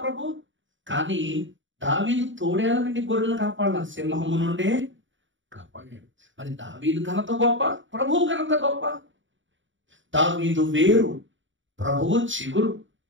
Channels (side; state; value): left; late; 0.55 ms